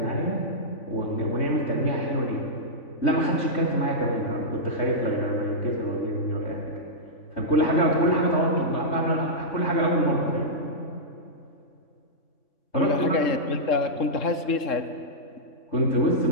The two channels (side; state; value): right; late; 3.7 ms